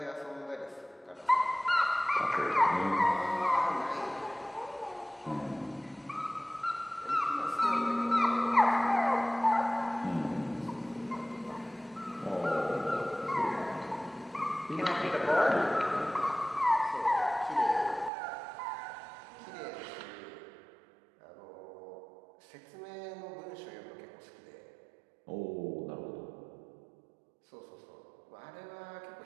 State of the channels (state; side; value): drops out; left; at 18.1 s